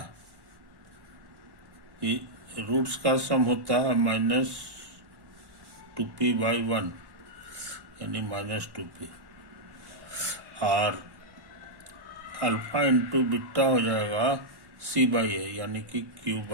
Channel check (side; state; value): left; late; 1.1 ms